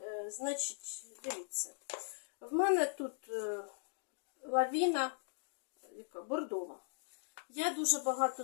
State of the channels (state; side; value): silent; right; digital silence